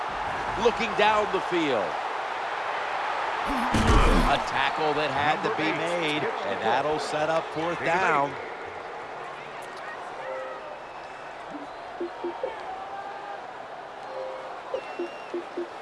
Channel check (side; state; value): both; identical; correlation 1.00